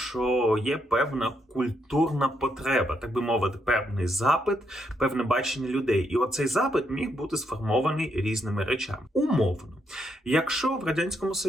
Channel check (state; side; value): normal; both; correlation 0.77